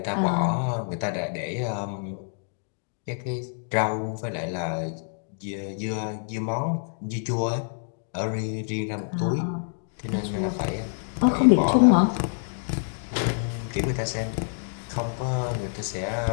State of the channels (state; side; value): silent; right; digital silence